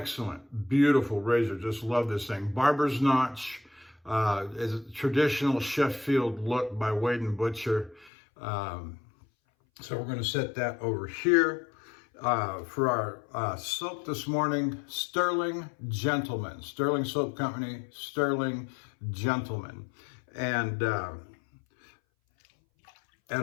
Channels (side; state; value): right; drops out; at 8.1 s